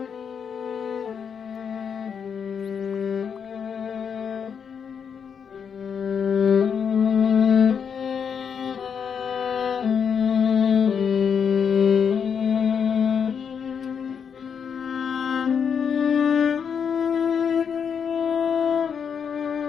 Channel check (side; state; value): right; quieter; 7.0 dB